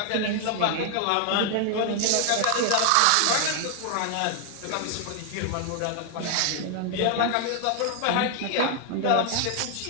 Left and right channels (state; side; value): different; both; correlation 0.00